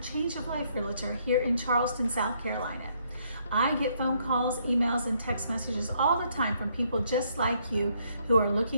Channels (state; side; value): inverted; both; correlation -0.70